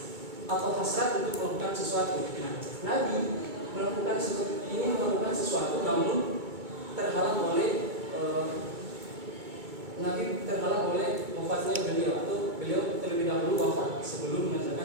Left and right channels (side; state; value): left; late; 2.2 ms